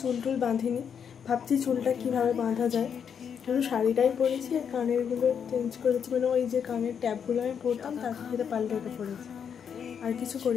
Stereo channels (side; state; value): right; quieter; 7.5 dB